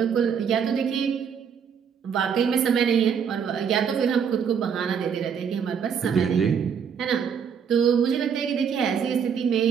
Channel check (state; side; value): quieter; left; 7.2 dB